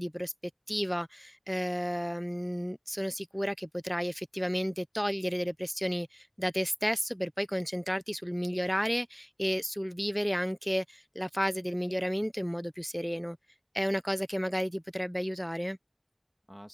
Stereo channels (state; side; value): identical; both; correlation 1.00